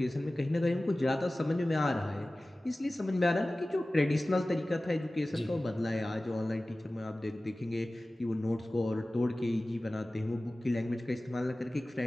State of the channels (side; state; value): both; normal; correlation 0.97